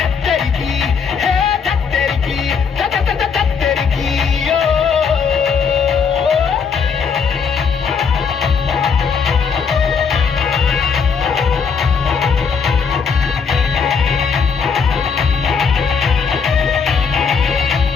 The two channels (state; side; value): quieter; right; 6.0 dB